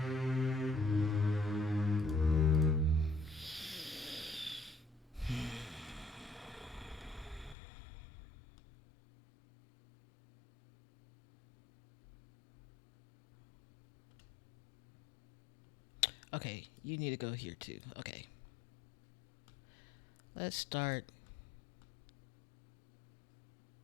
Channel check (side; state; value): right; drops out; at 7.6 s